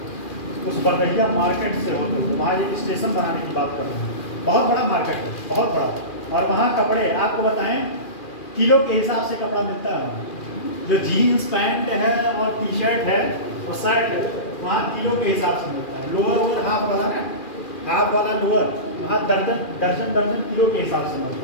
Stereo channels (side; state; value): right; late; 2.4 ms